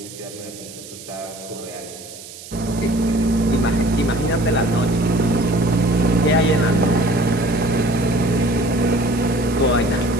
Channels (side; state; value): right; noise; hiss, 16 dB below the sound